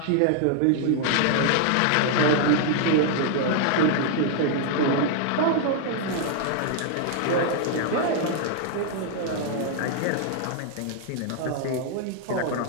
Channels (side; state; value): both; different; correlation 0.00